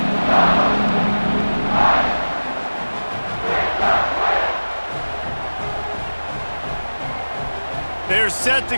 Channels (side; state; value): both; inverted; correlation -1.00